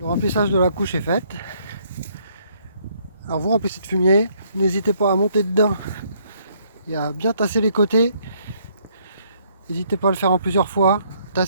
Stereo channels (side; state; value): both; inverted; correlation -0.68